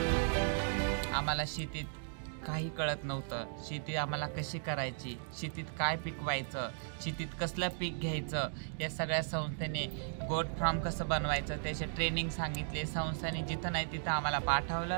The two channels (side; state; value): left; silent; digital silence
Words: आम्हाला शेतीत काही कळत नव्हतं, शेती आम्हाला कशी करायची, शेतीत काय पिकवायचं, शेतीत कसलं पीक घ्यायचं, या सगळ्या संस्थेने गोट फार्म कसं बनवायचं त्याचे ट्रेनिंग सांगितले। संस्थेने जिथं नाही तिथं आम्हाला